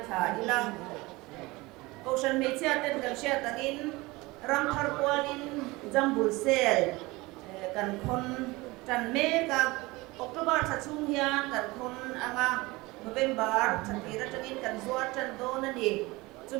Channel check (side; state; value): left; quieter; 22.2 dB